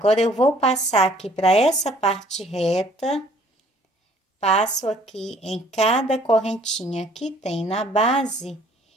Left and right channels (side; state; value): both; normal; correlation 0.58